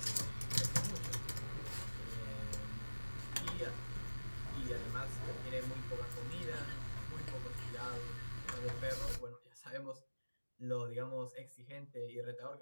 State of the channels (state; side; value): inverted; both; correlation -1.00